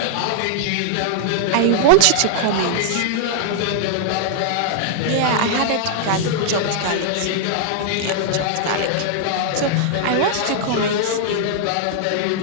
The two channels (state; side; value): different; both; correlation -0.01